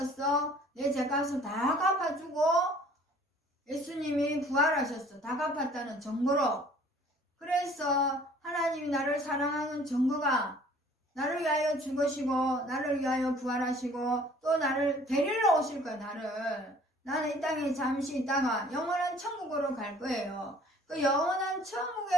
내 죄값을 다 갚아주고 예수님이 부활하셨어. 다 갚았다는 증거로. 그래서 하나님이 나를 사랑하는 증거가 나를 위하여 죽으시고 나를 위하여 부활하시고 또 나를 데리러 오실 거야. 나는 이 땅에 잠시 있다가 영원한 천국으로 갈 거예요. 그 영원한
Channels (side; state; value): both; normal; correlation 0.53